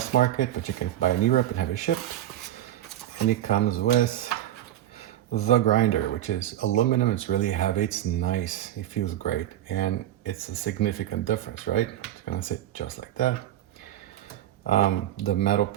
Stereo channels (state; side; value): quieter; left; 12.5 dB